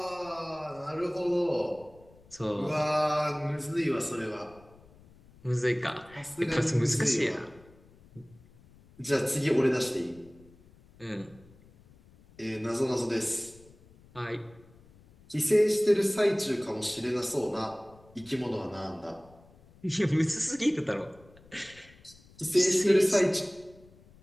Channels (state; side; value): noise; left; rumble, 25 dB below the sound